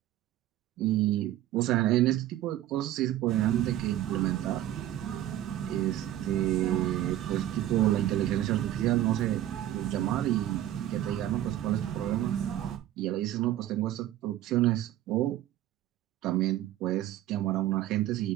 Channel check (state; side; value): quieter; left; 13.2 dB